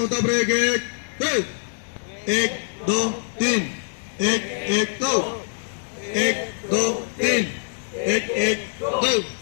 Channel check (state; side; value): silent; right; digital silence